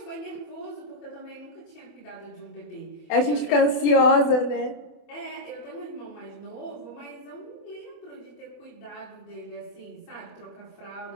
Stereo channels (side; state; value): right; late; 28 ms